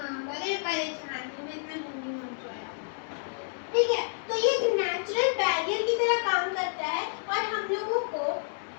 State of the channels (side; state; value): right; silent; digital silence